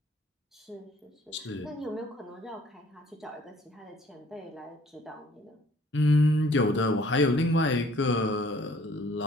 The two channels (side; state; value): both; normal; correlation 0.57